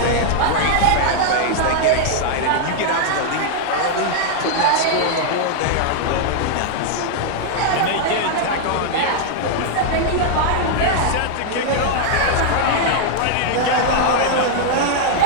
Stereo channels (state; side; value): different; both; correlation -0.01